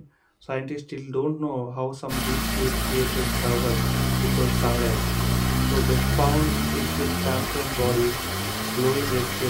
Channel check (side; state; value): both; identical; correlation 1.00